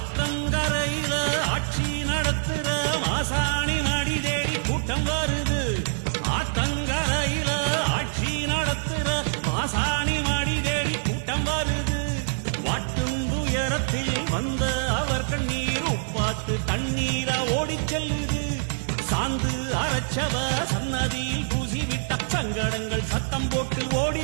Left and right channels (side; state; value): left; silent; 61 dB below the other